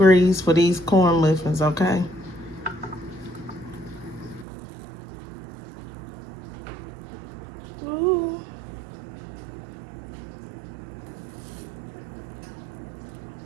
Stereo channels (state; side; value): drops out; left; at 4.5 s